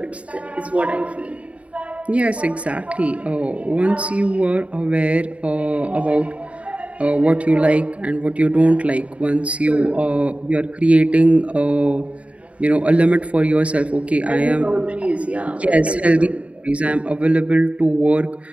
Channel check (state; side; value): late; left; 0.064 ms